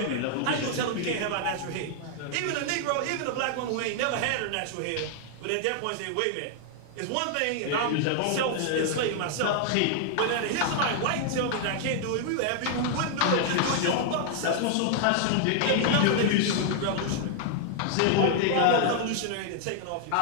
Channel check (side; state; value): both; different; correlation 0.00